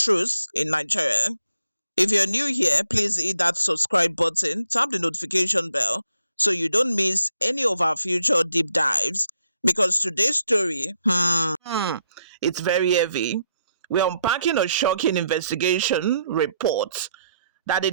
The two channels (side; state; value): both; inverted; correlation -0.76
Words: in Nigeria. If you're new here, please hit that subscribe button, tap the notification bell so you don't miss any of our future deep dives. Because today's story, it's very heavy. We're unpacking a shocking investigation report that the